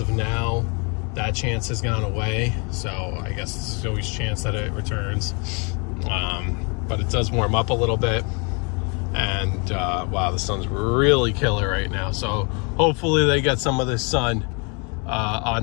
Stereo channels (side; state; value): right; quieter; 34.1 dB